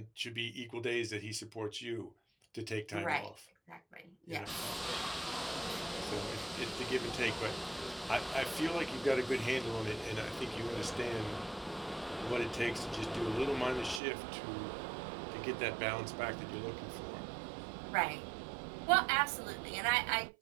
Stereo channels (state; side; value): drops out; left; at 14.0 s